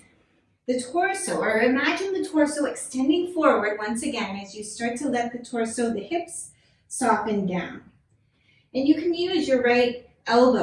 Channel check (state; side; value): identical; both; correlation 1.00